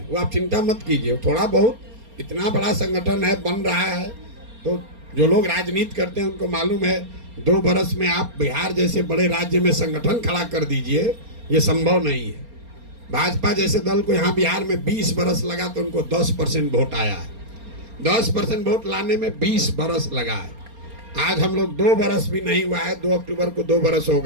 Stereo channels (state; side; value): late; left; 4.3 ms